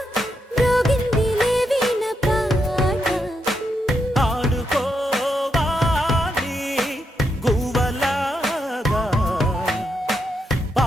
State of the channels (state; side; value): normal; both; correlation 0.82